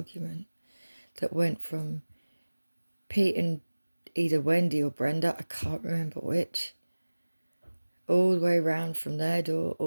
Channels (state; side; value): inverted; both; correlation -1.00